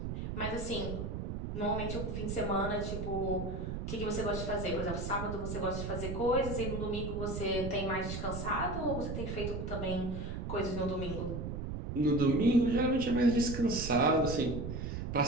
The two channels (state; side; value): noise; right; rumble, 5 dB below the sound